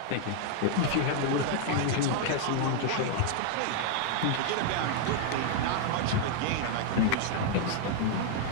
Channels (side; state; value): both; different; correlation 0.00